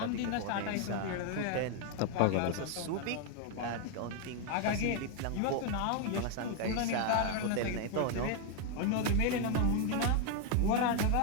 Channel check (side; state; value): both; different; correlation 0.01